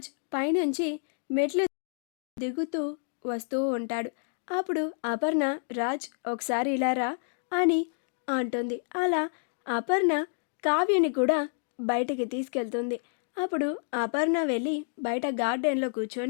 పైనుంచి మెట్లు దిగుతూ వస్తూ ఉంటాడు. అప్పుడు అపర్ణ రాజ్ ఒకసారి ఇలా రా అని అంటుంది. అలా అపర్ణ కావ్యని కూడా బయటికి తీసుకెళ్తుంది. అప్పుడు అపర్ణ వెళ్ళి బయట గార్డెన్లో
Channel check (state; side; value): silent; right; digital silence